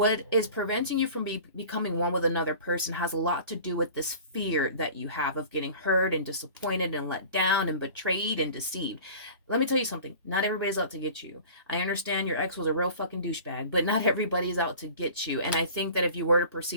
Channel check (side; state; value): both; inverted; correlation -0.42